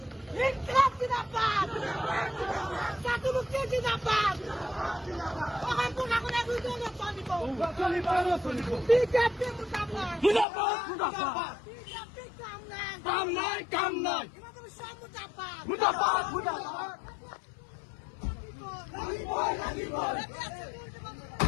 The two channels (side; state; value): right; drops out; at 10.5 s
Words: কাম নাই কাম নাই